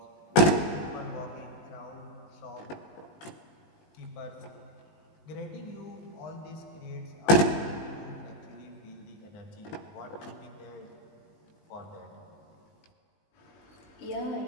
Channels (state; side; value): late; right; 19 ms